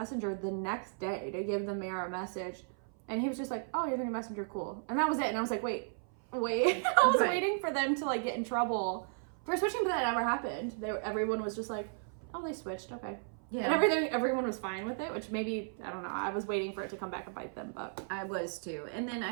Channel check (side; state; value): left; silent; 55 dB below the other